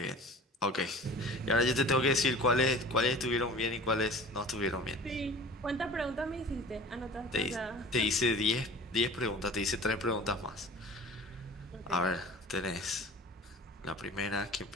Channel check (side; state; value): both; normal; correlation 0.42